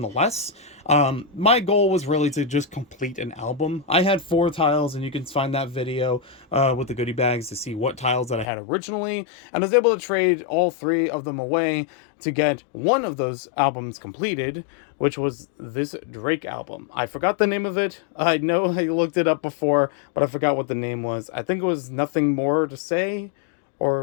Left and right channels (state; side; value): drops out; right; at 8.5 s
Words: My goal was really to just complete an album. I had 4 tiles, and you can find that video with the goodie bags to see what tiles that I had originally. And I was able to trade all 3 of them away to get one of those albums completed, which was this Drake album. I forgot the name of it. I know I looked it up before, but I forgot what the name was. I think it was Nothing More to Say,